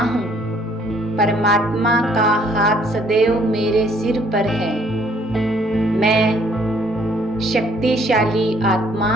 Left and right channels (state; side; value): normal; both; correlation 0.62